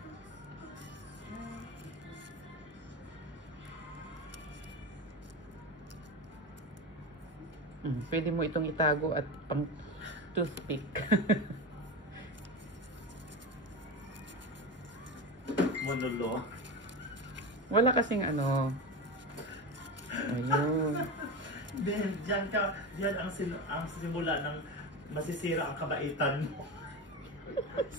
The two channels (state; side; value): normal; both; correlation 0.22